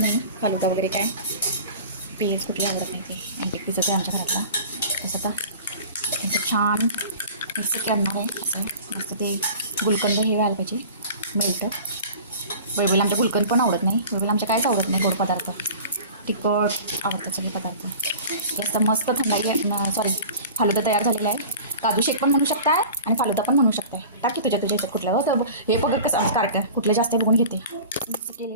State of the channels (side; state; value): both; inverted; correlation -0.40